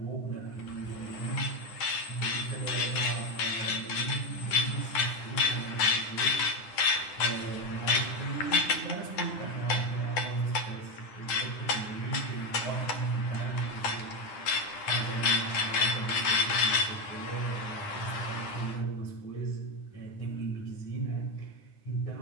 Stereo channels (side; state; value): right; late; 10 ms